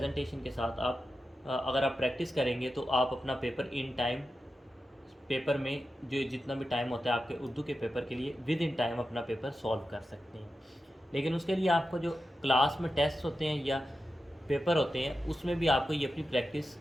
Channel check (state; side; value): normal; both; correlation 0.91